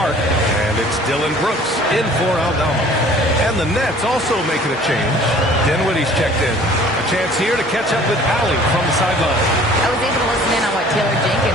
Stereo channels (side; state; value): both; normal; correlation 0.51